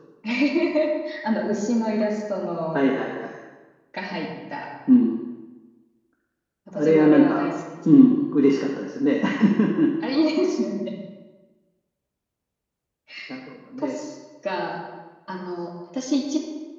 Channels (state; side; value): identical; both; correlation 1.00